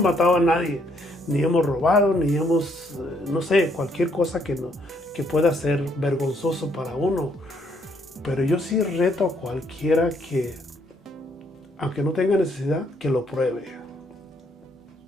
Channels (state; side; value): normal; both; correlation 0.70